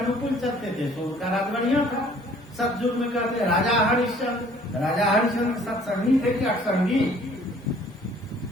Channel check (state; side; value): normal; both; correlation 0.56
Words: चलते थे, सो उनका राज बढ़िया था। सतयुग में कहते राजा हरिश्चंद्र, राजा हरिश्चंद्र सत्संगी थे कि असंगी,